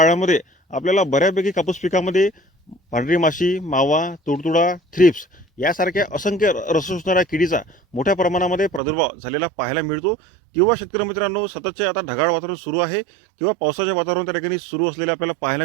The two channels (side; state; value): left; drops out; at 8.8 s